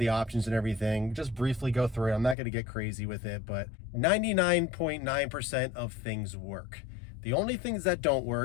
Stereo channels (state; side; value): drops out; right; at 2.4 s